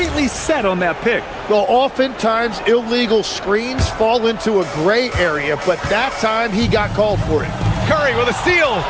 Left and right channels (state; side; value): identical; both; correlation 1.00